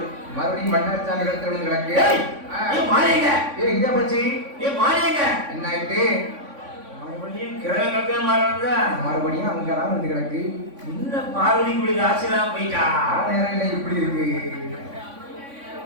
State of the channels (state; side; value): late; left; 3.5 ms